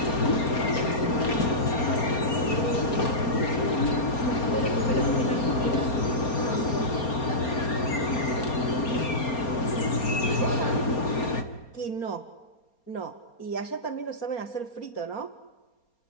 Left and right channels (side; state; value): right; late; 4.3 ms